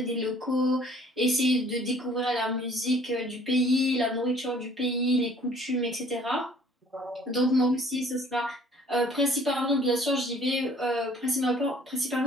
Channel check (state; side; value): normal; both; correlation 0.55